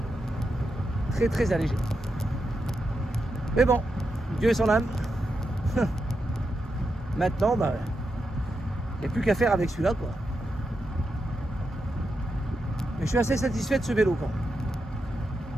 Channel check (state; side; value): normal; both; correlation 0.86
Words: Très allégé. Mais bon, Dieu et son âme. Maintenant, il n'y a plus qu'à faire avec celui-là, quoi. Mais je suis assez satisfait de ce vélo, quoi.